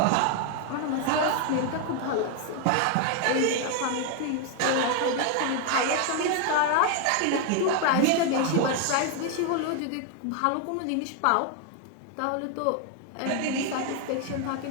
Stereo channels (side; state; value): both; different; correlation 0.01